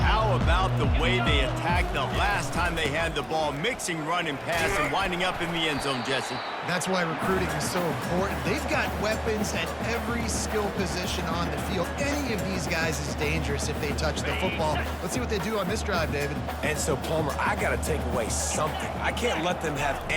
about the way they attacked the last time they had the ball, mixing run and pass and winding up in the end zone, Jesse? That's why recruiting is so important. They've got weapons at every skill position on the field. Any of these guys is dangerous if they touch the football. Let's see what they do on this drive, David. And so, Palmer, I got to take away something. I can't let them have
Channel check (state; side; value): identical; both; correlation 1.00